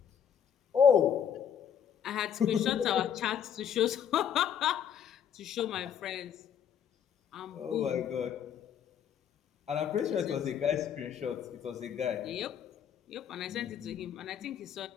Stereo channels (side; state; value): right; quieter; 8.5 dB